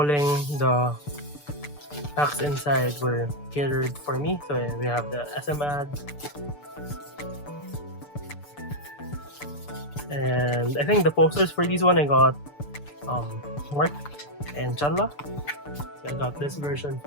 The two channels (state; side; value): late; right; 6.8 ms